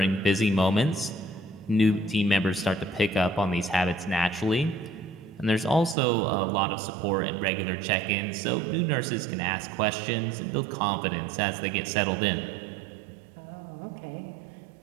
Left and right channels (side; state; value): left; drops out; at 6.0 s